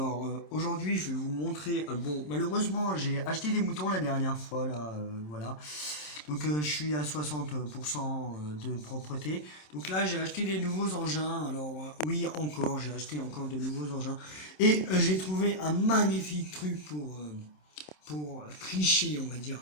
aujourd'hui je vais vous montrer, bon malheureusement j'ai acheté des moutons la dernière fois là, voilà, donc je suis à 60% de propreté, donc là j'ai acheté des nouveaux engins, alors oui encore, j'ai acheté encore de nouveaux engins, et j'ai trouvé un magnifique truc pour tricher on va dire.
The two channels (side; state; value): right; late; 27 ms